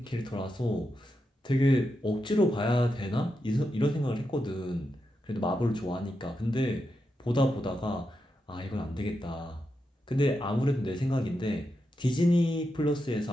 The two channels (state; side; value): normal; both; correlation 0.86